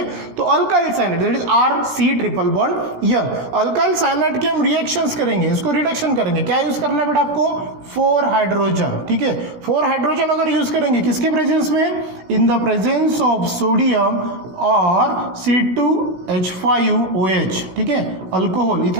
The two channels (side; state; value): left; late; 16 ms